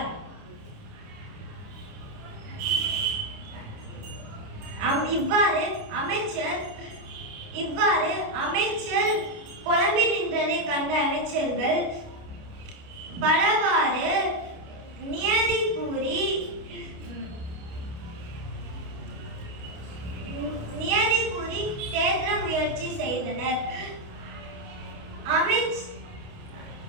இவ்வாறு அமைச்சர் புலம்பி நின்றதை கண்ட அமைச்சர்கள் பலவாறு நியதி கூறி தேற்ற முயற்சி செய்தனர்.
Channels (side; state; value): left; late; 29 ms